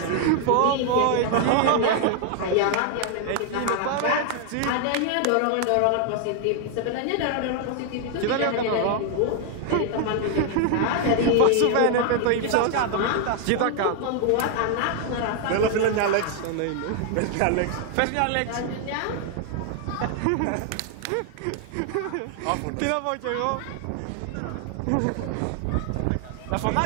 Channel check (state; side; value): different; both; correlation 0.00